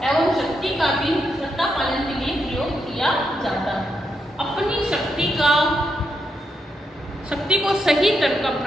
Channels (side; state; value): both; normal; correlation 0.82